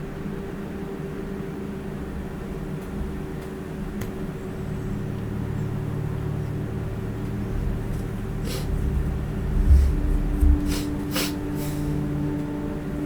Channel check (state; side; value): identical; both; correlation 1.00